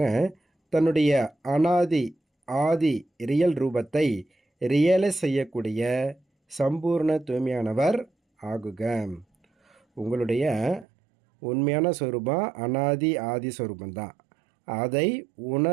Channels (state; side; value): drops out; left; at 10.9 s